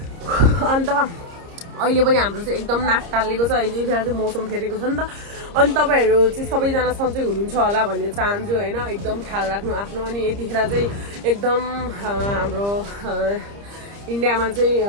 अन्त अहिले पनि हाम्रो चाहिँ एकदम नाक टालिएको छ, यतिखेर चाहिँ मौसम फेरेको छ नि त। अनि तपाईँहरू चाहिँ सबैजना सन्चै हुनुहुन्छ होला भन्ने चाहन्छु होइन। एकदम ख्याल राख्नु आफ्नो। अनि यतिखेर चाहिँ एकदम हाम्रो इन्डियामा चाहिँ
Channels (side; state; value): left; late; 30 ms